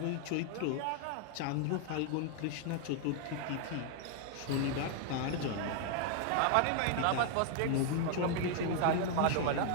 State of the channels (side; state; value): both; different; correlation 0.00